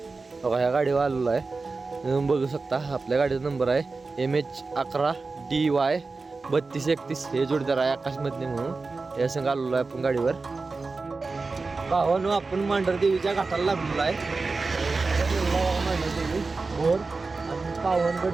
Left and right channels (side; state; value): left; quieter; 3.9 dB